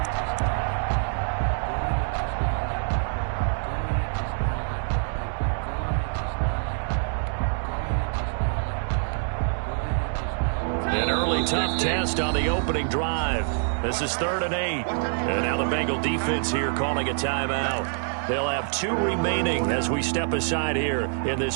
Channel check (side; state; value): left; silent; 61 dB below the other